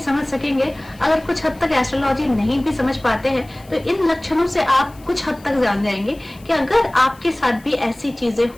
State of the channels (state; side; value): noise; left; hiss, 26 dB below the sound